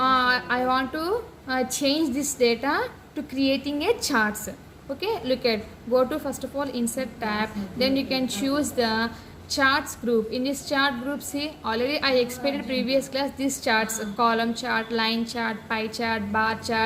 I want to change this data to creating a charts. Okay, look at, go to first of all insert tab, then you can choose the charts group. In this chart group, see, already I explained in previous class this charts: column chart, line chart, pie chart, bar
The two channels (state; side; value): identical; both; correlation 1.00